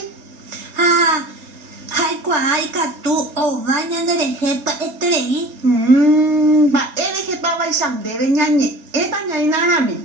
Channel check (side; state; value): left; late; 4.3 ms